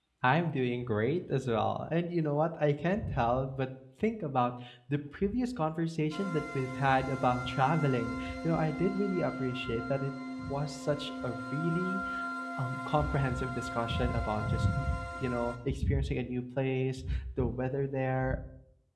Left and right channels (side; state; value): both; identical; correlation 1.00